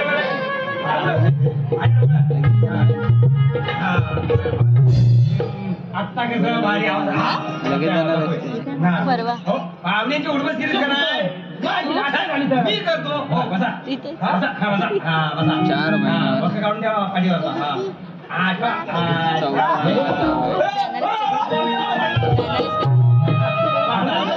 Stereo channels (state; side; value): identical; both; correlation 1.00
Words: आत्ता कसं भारी परवा पाहुण्याची उडबस केली का नाही मी करतो हो बसा इथे हा, बसा हा, बसा हा, बसा 4 महिने. हा, बसा काढून द्या पाठीवर हा. आठ